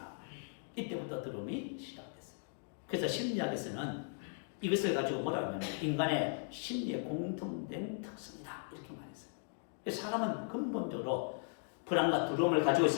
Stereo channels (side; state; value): right; silent; 53 dB below the other